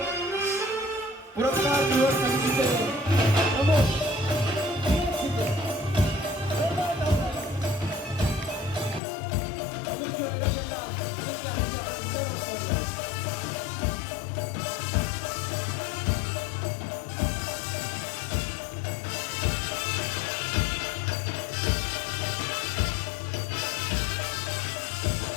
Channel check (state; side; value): drops out; right; at 9.0 s